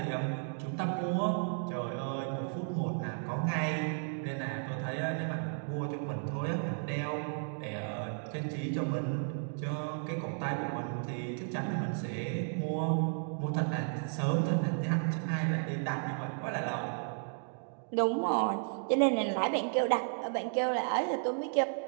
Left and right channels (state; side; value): silent; left; 55 dB below the other